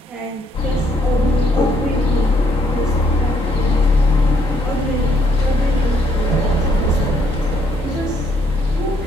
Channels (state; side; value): normal; both; correlation 0.70